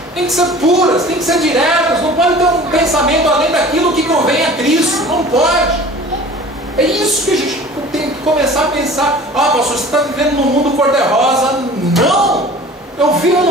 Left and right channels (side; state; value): both; normal; correlation 0.43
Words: têm que ser puras, têm que ser diretas. Não pode ter um pensamento além daquilo que convém a Cristo, não pode. É isso que a gente tem que começar a pensar. Ah, pastor, você está vivendo num mundo cor-de-rosa. Não! Eu vivo